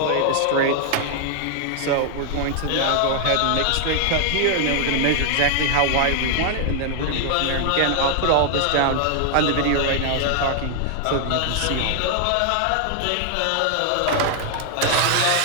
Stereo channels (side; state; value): both; different; correlation 0.00